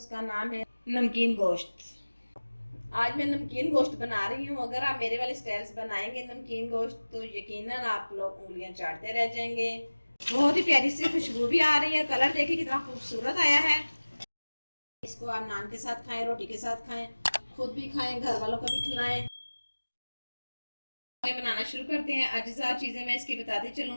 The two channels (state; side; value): inverted; both; correlation -1.00